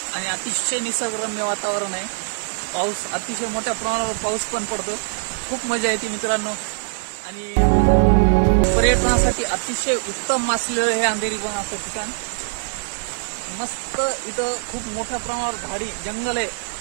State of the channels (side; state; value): left; silent; 55 dB below the other